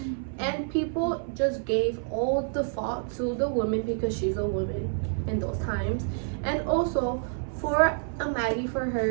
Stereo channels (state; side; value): silent; left; 59 dB below the other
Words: and people just gave all the fault to the woman because she's a woman in those times. And also for a Maggie, for